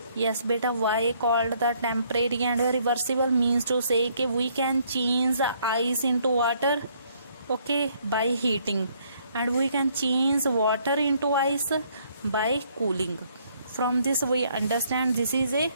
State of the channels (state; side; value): inverted; both; correlation -0.67